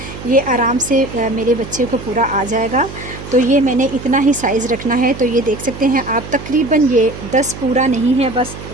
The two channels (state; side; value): noise; right; hum, 12 dB below the sound